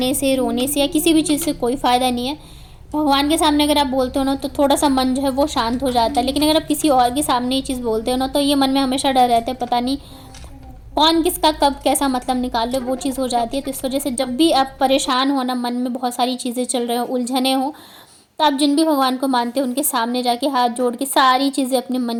से, रोने से या किसी भी चीज़ से कोई फ़ायदा नहीं है। भगवान के सामने अगर आप बोलते हो ना, तो थोड़ा सा मन जो है वो शांत हो जाता है। लेकिन अगर आप किसी और के सामने ये चीज़ बोलते हो ना, तो ये मन में हमेशा डर रहता है, पता नहीं कौन किसका कब कैसा मतलब निकाल ले, वो चीज़ हो जाती है। तो इस वजह से जब भी आप परेशान हो ना, मन में बहुत सारी चीज़ें चल रही हो, उलझने हो, तो आप जिन भी भगवान को मानते हो उनके सामने जाके हाथ जोड़ के सारी चीज़ें अपने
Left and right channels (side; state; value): both; identical; correlation 1.00